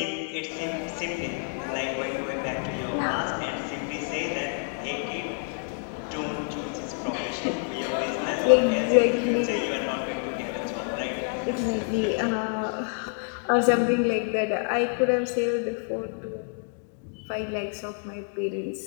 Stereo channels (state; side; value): silent; right; 55 dB below the other